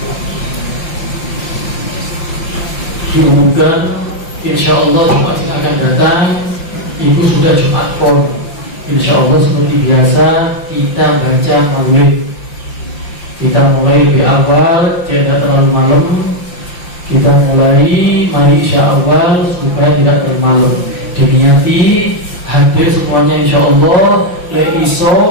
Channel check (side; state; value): right; late; 5.7 ms